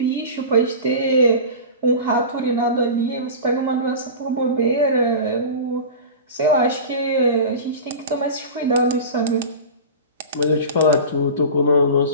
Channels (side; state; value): both; inverted; correlation -0.32